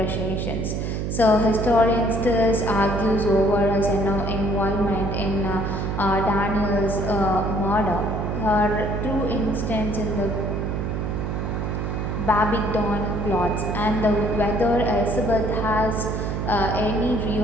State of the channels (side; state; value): right; noise; hum, 2 dB below the sound